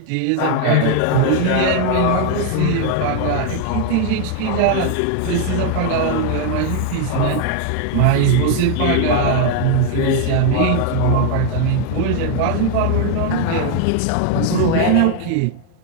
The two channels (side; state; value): both; different; correlation 0.00